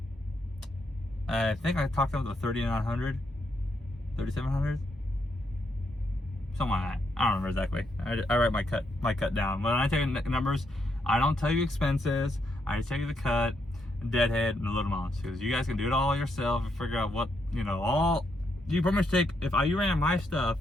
I think I talked about the 3,900, 3,700, something like that. I don't remember exactly. I write my cut down. When I tell you numbers, I don't tell you expenses. I just tell you the cut, deadhead, and the load amounts. Because you guys can do it all yourself and figure out what, you know, all. You pretty much take, if you ran my stuff,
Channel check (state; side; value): normal; both; correlation 0.78